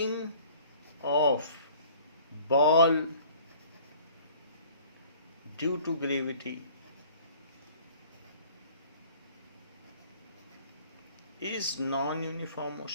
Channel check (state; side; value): inverted; both; correlation -0.51